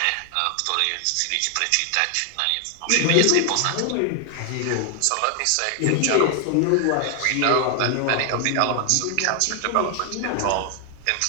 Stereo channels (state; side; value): different; both; correlation 0.00